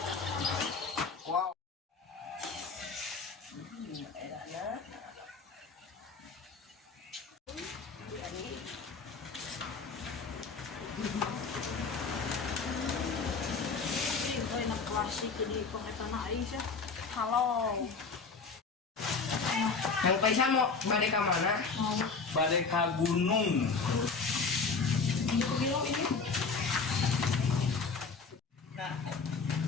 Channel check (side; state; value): right; quieter; 4.7 dB